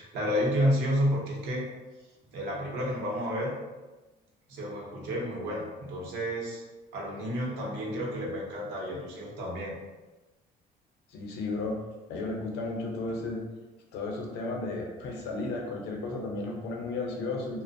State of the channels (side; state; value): both; normal; correlation 0.54